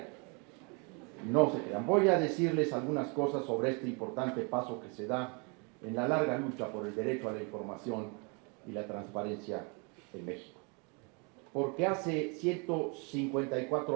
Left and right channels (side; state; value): left; quieter; 33.5 dB